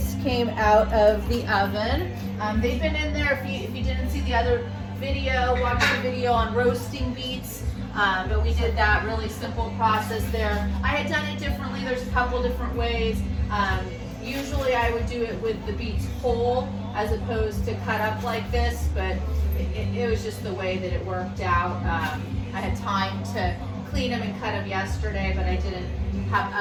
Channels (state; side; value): identical; both; correlation 1.00